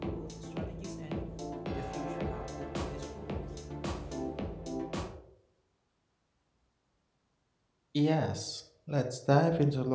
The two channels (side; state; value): both; identical; correlation 1.00